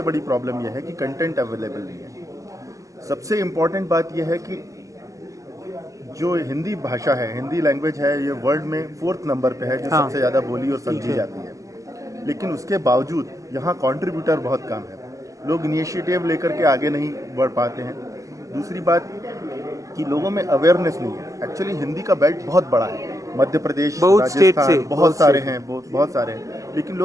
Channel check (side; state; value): left; late; 0.16 ms